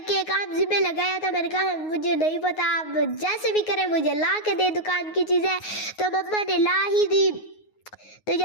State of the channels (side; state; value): right; late; 9.5 ms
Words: काम जिम्मे लगाया था, मैंने कहा मुझे नहीं पता, आप जैसे भी करें मुझे ला के दे दुकान की चीज़ें। तो मम्मा ने ला ही दी। तो